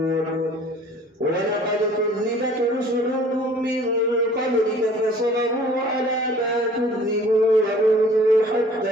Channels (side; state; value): both; normal; correlation 0.51